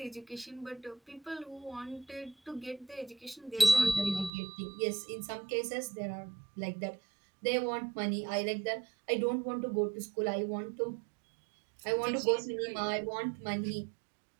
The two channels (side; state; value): left; drops out; at 4.3 s